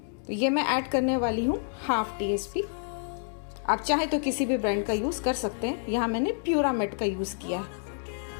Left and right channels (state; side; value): silent; right; digital silence